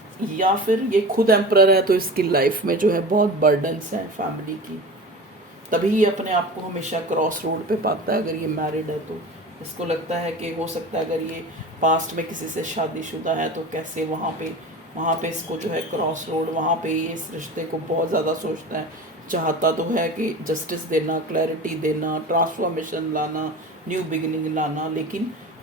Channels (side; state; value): both; normal; correlation 0.33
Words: या फिर ये खुद एम्परर है तो इसकी लाइफ में जो है बहुत बर्डन्स हैं फैमिली की, तभी ये अपने आप को हमेशा क्रॉस रोड पे पाता है। अगर ये मैरिड है तो इसको लगता है कि हो सकता है अगर ये पास्ट में किसी से शादीशुदा है तो कैसे वहाँ पे इसको जो है क्रॉस रोड, वहाँ पे ये इस रिश्ते को बहुत ज़्यादा सोचता है, चाहता तो है कि जस्टिस देना, क्लैरिटी देना, ट्रांसफॉर्मेशन लाना, न्यू बिगिनिंग लाना, लेकिन